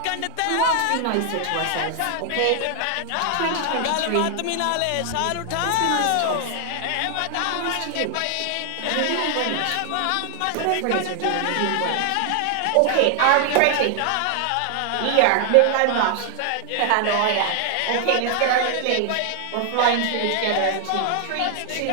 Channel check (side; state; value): both; different; correlation 0.00